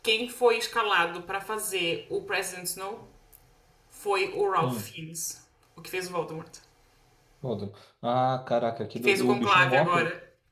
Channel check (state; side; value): identical; both; correlation 1.00